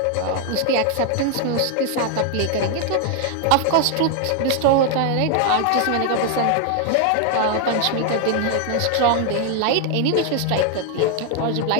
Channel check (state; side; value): different; both; correlation 0.01